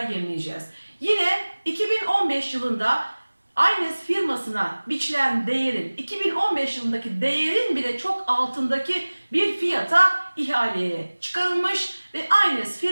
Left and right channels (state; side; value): inverted; both; correlation -1.00